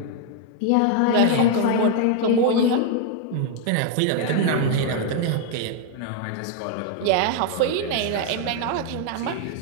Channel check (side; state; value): both; different; correlation 0.01